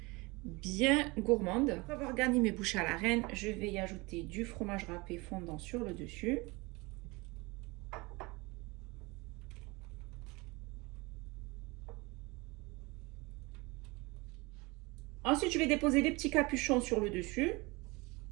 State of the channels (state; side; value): quieter; left; 25.0 dB